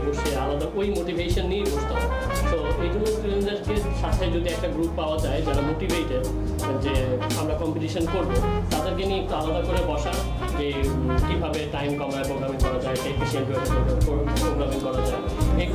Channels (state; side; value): identical; both; correlation 1.00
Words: বসে আলাদা ওই মোটিভেশন নিয়েই বসতে হয়। সো এই জন্য স্টুডেন্টদেরকে সাথে যদি একটা গ্রুপ পাওয়া যায় যারা মোটিভেটেড যে আমরা কম্পিটিশন করব, তাদেরকে নিয়ে একটু আলাদা করে বসা, যে কীভাবে টাইম কমায় প্রোগ্রামিং করা যায়, এফিসিয়েন্ট ওয়েতে প্রোগ্রামিং করা যায়,